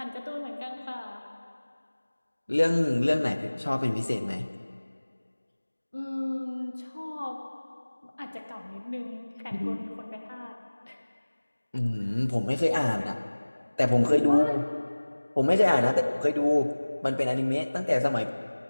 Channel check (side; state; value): both; inverted; correlation -1.00